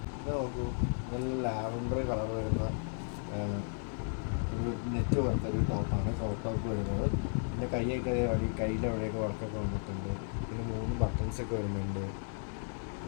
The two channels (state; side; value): silent; right; 55 dB below the other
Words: ഇത് നോക്കൂ, നല്ല ലാവൻഡർ കളർ വരുന്ന ഒരു നെറ്റ് പോലത്തെ ഒരു ടോപ്പാണ് ക്രോപ്പ് ടോപ്പ് വരുന്നത്. പിന്നെ കയ്യിലെ അവിടെയൊക്കെ വർക്കൊക്കെ വന്നിട്ടുണ്ട്. പിന്നെ 3 ബട്ടൺസൊക്കെ വരുന്നുണ്ട്.